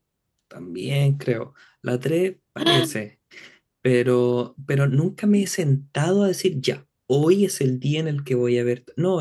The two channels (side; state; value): both; identical; correlation 1.00